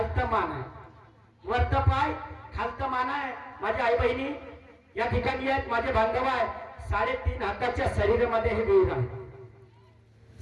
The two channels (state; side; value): identical; both; correlation 1.00